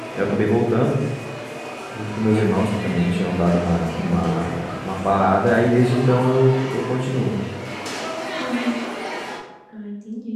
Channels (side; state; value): both; identical; correlation 1.00